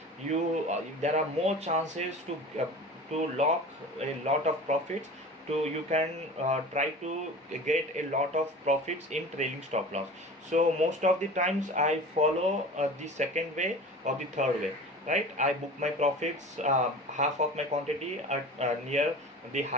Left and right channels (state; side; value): normal; both; correlation 0.37